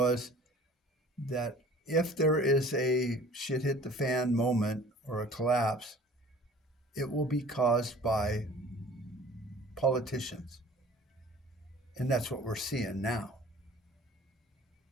that if there is a shit hit the fan moment or a collapse, it will be caused by politicians. And that's what we're seeing now.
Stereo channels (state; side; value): normal; both; correlation 0.47